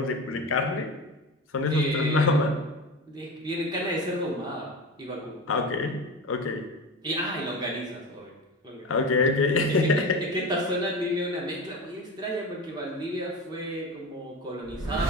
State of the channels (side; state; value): both; normal; correlation 0.27